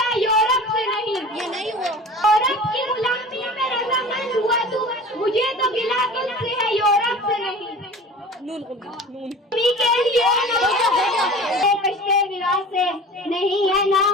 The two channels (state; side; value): normal; both; correlation 0.39